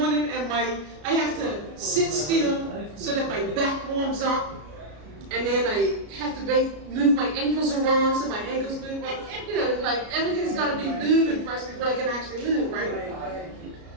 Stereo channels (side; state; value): left; late; 33 ms